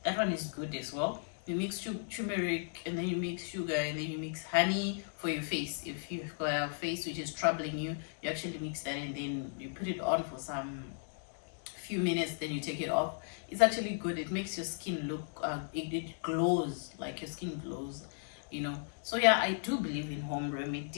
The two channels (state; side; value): silent; right; digital silence